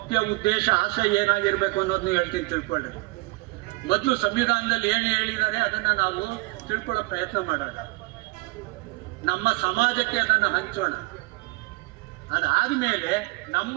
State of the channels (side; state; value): left; quieter; 23.1 dB